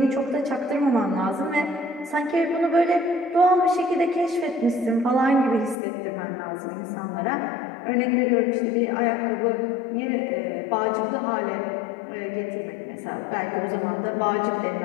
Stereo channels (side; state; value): right; drops out; at 5.8 s